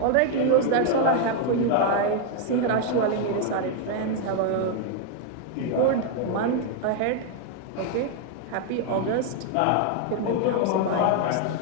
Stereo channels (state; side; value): different; both; correlation 0.00